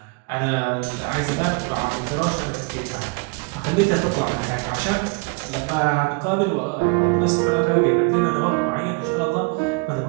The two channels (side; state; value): left; quieter; 31.3 dB